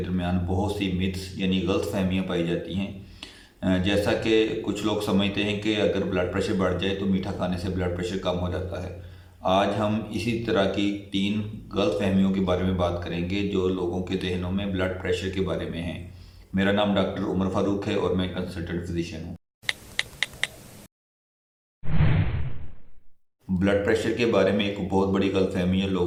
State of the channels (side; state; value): both; identical; correlation 1.00